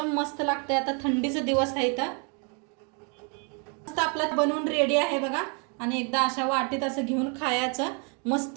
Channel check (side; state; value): left; quieter; 37.5 dB